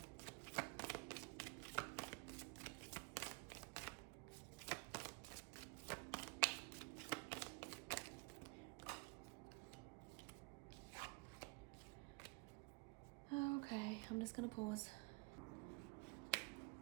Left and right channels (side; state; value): left; quieter; 28.7 dB